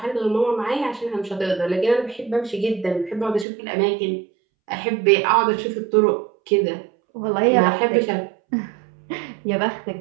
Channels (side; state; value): left; drops out; at 3.5 s